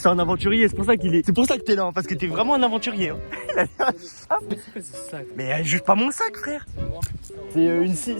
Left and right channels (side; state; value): both; inverted; correlation -1.00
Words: un aventurier, c'est pour ça que t'es là, parce que t'es vraiment un aventurier. C'est quoi ce sac? Mais juge pas mon sac frère. C'est